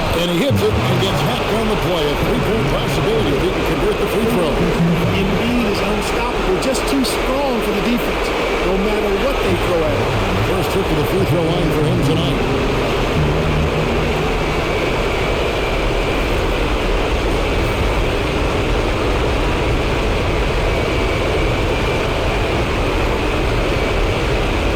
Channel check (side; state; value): both; identical; correlation 1.00